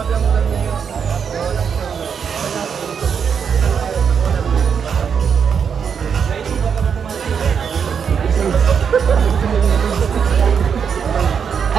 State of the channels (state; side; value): quieter; left; 6.9 dB